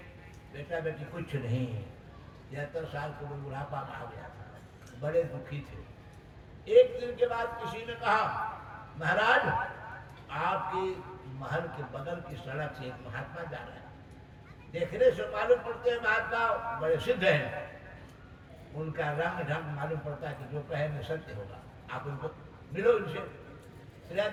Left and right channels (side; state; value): both; identical; correlation 1.00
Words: बेटा बेटी कुछ नहीं। 73 साल को बुढ़ापा में आ गया था, बड़े दुखी थे। एक दिन के बाद किसी ने कहा, महाराज आपके महल के बगल की सड़क से एक महात्मा जा रहे हैं, देखने से मालूम पड़ते हैं महात्मा बड़े सिद्ध हैं, उनका रंग ढंग मालूम पड़ता है कि जो कहेंगे सत्य होगा, आप उनको मिलो उनसे।